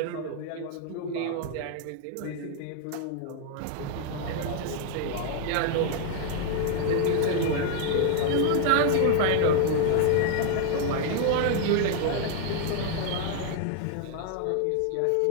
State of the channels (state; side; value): different; both; correlation 0.00